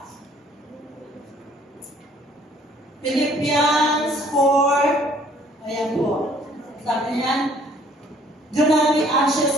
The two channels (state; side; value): normal; both; correlation 0.59